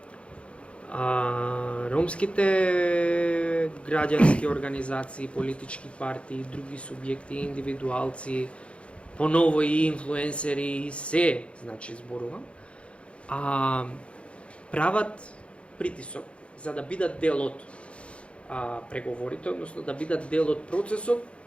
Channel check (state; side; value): late; right; 0.060 ms